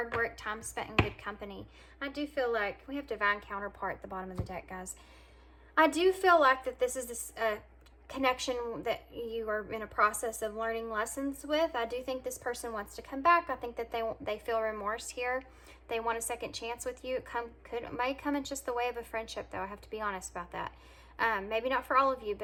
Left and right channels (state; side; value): identical; both; correlation 1.00